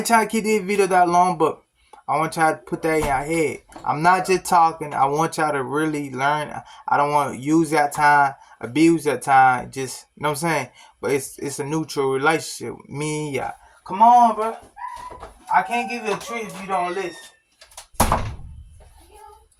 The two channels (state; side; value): identical; both; correlation 1.00